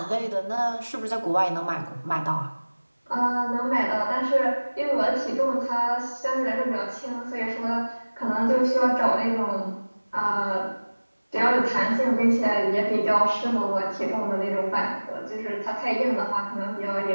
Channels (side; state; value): both; inverted; correlation -1.00